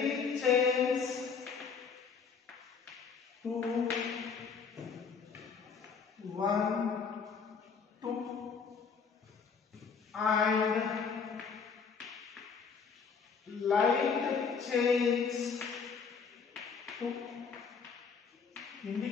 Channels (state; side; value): quieter; right; 5.8 dB